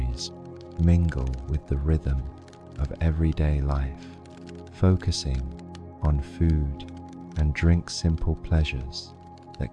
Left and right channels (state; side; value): identical; both; correlation 1.00